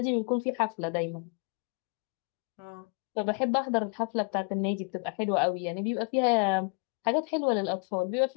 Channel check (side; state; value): right; quieter; 34.5 dB